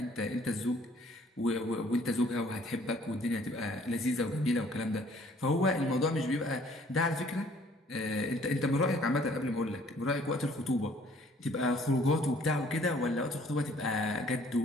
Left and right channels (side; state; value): both; normal; correlation 0.58